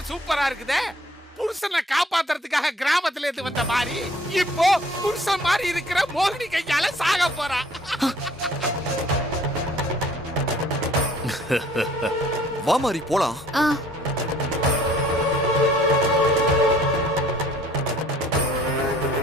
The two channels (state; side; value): normal; both; correlation 0.56